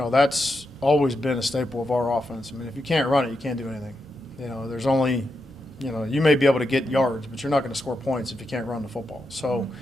that's always been a staple of our offense. If you can't run it, you can't do anything. There's only, you may be able to get yards, but you're not going to score points if you can't run the football. So,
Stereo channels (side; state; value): both; normal; correlation 0.85